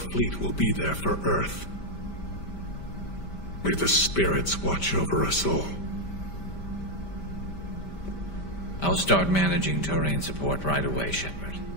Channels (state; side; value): late; right; 5.1 ms